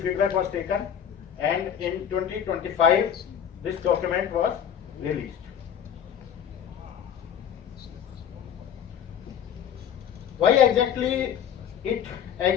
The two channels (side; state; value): right; quieter; 8.8 dB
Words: feedback was taken and in 2025 this document was released. Why exactly it